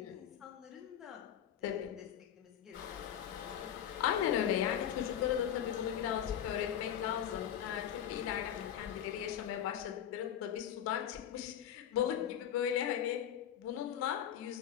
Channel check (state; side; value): quieter; right; 10.0 dB